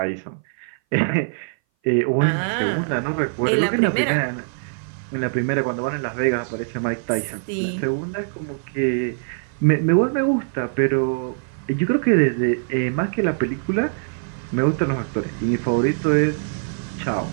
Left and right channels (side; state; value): left; silent; 59 dB below the other